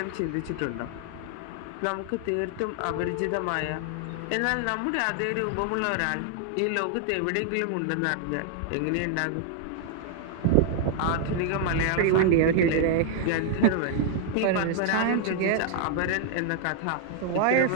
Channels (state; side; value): different; both; correlation 0.00